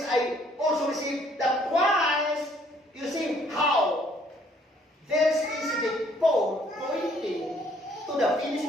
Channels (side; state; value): both; normal; correlation 0.63